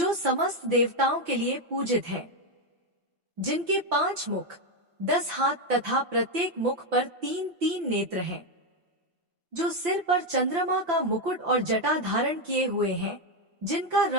समस्त देवताओं के लिए पूजित है, जिनके 5 मुख, 10 हाथ तथा प्रत्येक मुख पर 3-3 नेत्र हैं, जो सिर पर चंद्रमा का मुकुट और जटा धारण किए हुए हैं, जिनका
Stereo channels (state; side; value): late; left; 5.8 ms